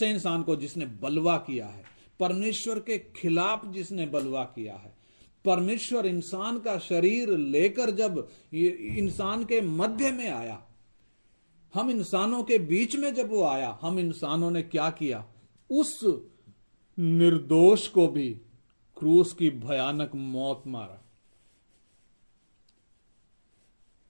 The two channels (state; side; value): inverted; both; correlation -1.00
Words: इंसान को? जिसने बलवा किया है, परमेश्वर के खिलाफ जिसने बलवा किया है। परमेश्वर इंसान का शरीर लेकर जब इंसान के मध्य में आया, हम इंसानों के बीच में जब वो आया, हम इंसानों ने क्या किया? उस निर्दोष को भी क्रूस की भयानक मौत मारा।